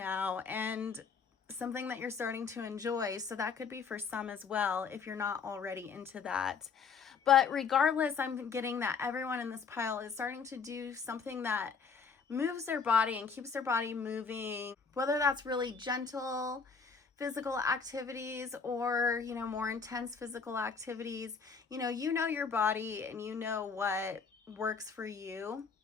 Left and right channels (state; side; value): quieter; right; 5.6 dB